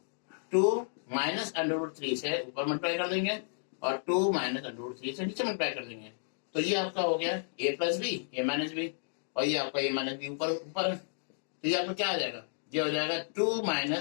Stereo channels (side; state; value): right; silent; digital silence